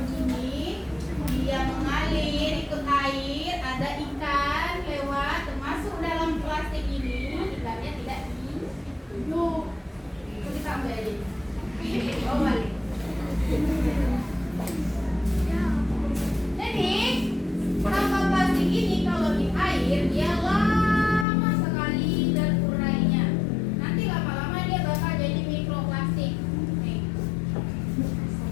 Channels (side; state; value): right; drops out; at 21.2 s